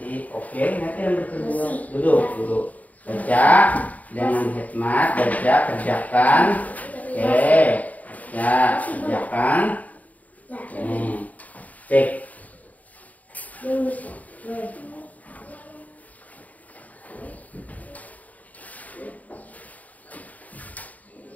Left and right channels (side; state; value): right; late; 0.073 ms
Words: Oke, nanti yang berdua. Duduk. Baca dengan hikmat, baca, kerjakan. Oke. Ya, kerjakan. Ini. Cek.